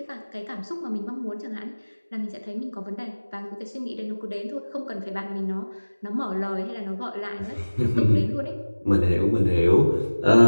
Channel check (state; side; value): inverted; both; correlation -1.00